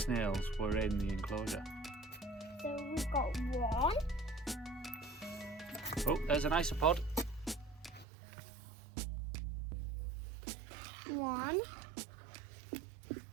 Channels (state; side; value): drops out; left; at 8.1 s